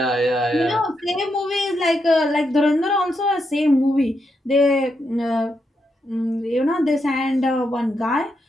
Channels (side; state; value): both; normal; correlation 0.82